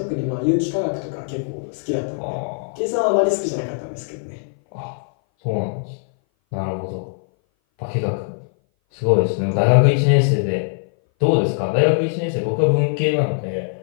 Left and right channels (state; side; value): silent; right; 59 dB below the other